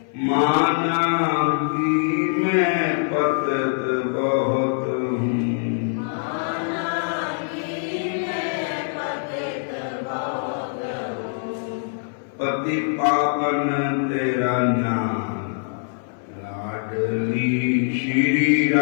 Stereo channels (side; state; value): right; silent; 58 dB below the other